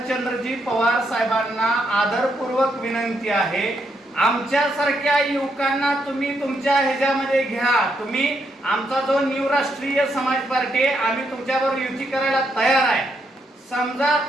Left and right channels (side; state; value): both; normal; correlation 0.78